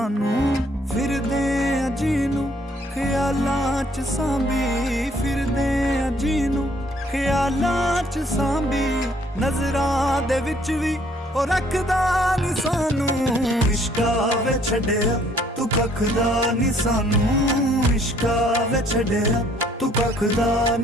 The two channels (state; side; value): normal; both; correlation 0.63